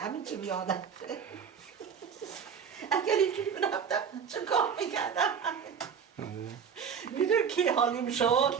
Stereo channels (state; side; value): quieter; left; 7.0 dB